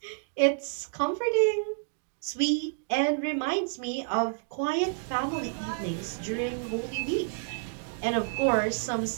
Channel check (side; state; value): left; silent; digital silence